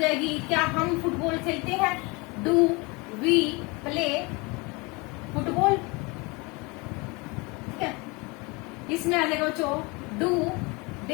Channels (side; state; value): right; quieter; 27.0 dB